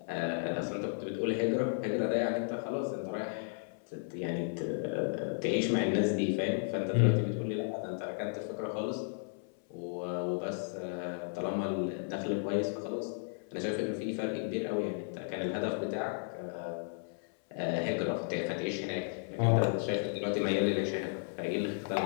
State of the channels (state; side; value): silent; right; 55 dB below the other